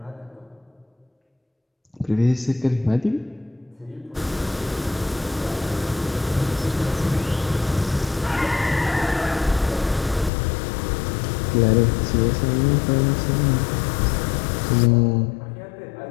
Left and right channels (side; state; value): right; drops out; at 10.3 s